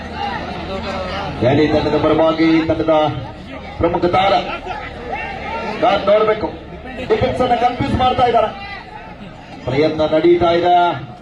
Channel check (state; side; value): identical; both; correlation 1.00